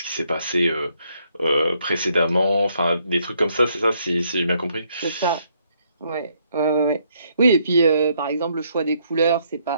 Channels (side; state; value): both; inverted; correlation -0.72